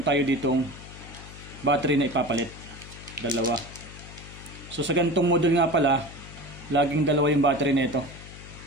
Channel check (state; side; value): noise; left; hum, 15 dB below the sound